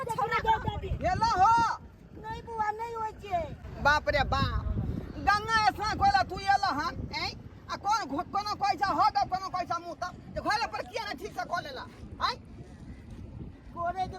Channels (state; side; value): identical; both; correlation 1.00